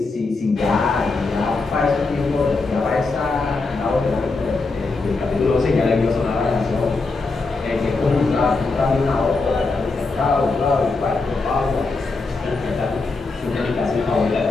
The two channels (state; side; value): quieter; right; 3.8 dB